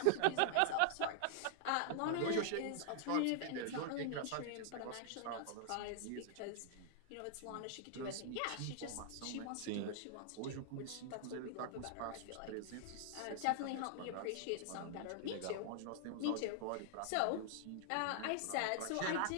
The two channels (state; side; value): different; both; correlation 0.00